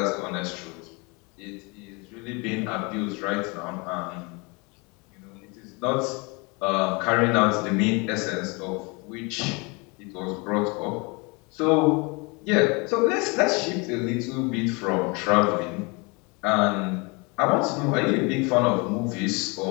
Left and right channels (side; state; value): right; quieter; 29.0 dB